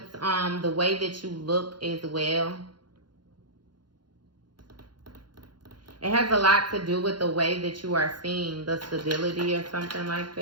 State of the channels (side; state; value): left; late; 0.71 ms